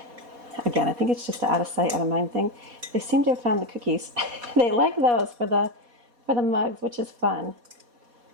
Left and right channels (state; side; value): late; left; 4.2 ms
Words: Again, I think it's just an out of sight, out of mind thing. They seem to have found the cookies. They like those for the mugs, which is fun.